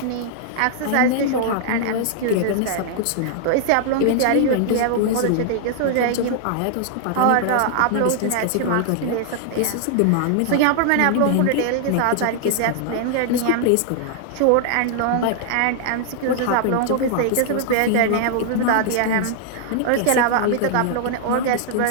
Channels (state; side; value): different; both; correlation -0.01